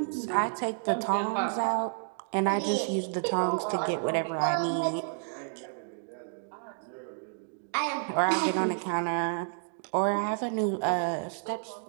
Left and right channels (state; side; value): silent; left; digital silence